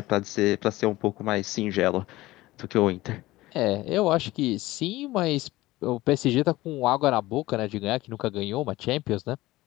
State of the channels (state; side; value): quieter; right; 18.2 dB